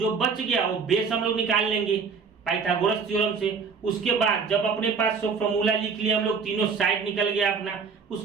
बच गया वो बेस हम लोग निकाल लेंगे पाइथागोरस थ्योरम से। उसके बाद जब अपने पास सब फॉर्मूला लिख लिया हम लोग, तीनों साइड निकल गया अपना,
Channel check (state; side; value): quieter; left; 5.5 dB